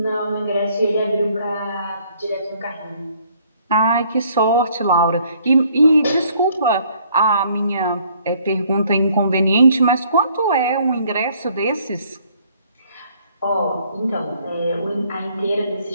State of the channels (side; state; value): both; inverted; correlation -0.63